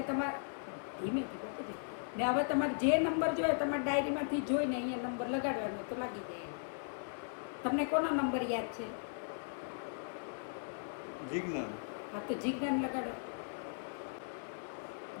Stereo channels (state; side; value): silent; right; 53 dB below the other